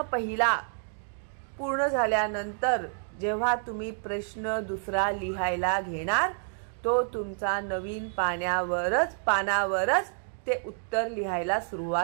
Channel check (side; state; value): left; silent; 58 dB below the other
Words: पहिला पूर्ण झाल्यानंतर जेव्हा तुम्ही प्रश्न दुसरा लिहायला घेणार, तो तुमचा नवीन पानावरच ते उत्तर लिहायला